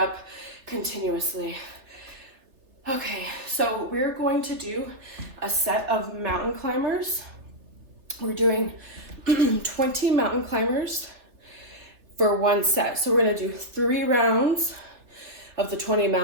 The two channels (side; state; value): left; late; 3.4 ms